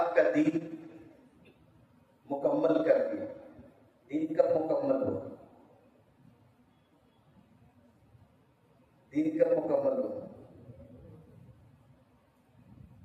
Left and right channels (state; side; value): identical; both; correlation 1.00